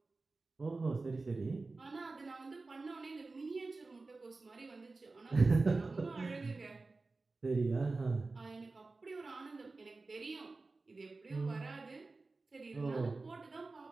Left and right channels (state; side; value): quieter; left; 3.6 dB